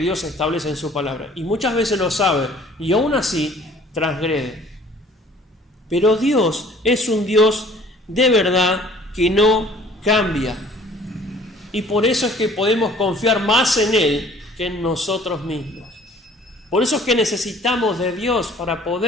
Dios establece en su palabra. Y muchas veces lo sabe, y aún así transgrede. Pero Dios es un Dios de verdad que no cambia. Y por eso es que podemos confiar más en Él que en nosotros mismos. Por eso es que necesitamos de Dios para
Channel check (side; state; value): both; normal; correlation 0.53